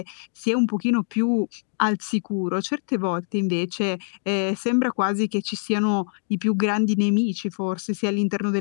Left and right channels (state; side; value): silent; right; 61 dB below the other